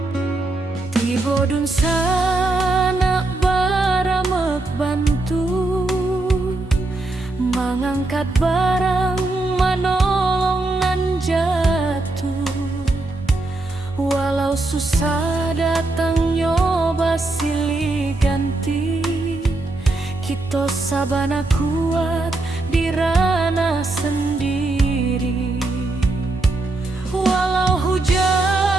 Bodun sana baramek bantu mengangkat barang manolongan jatuh. Walau susah datang nyoba silih ganti, kita sabana kuat di ranah sendiri. Walau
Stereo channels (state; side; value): quieter; left; 3.0 dB